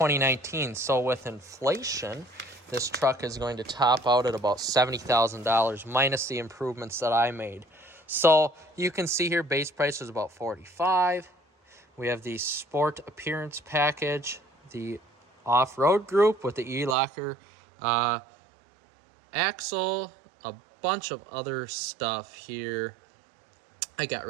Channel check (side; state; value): left; drops out; at 16.9 s